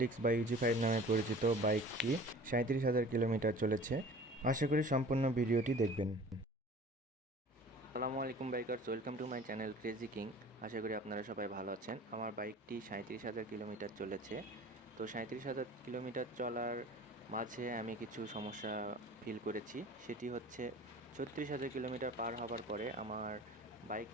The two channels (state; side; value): normal; both; correlation 0.44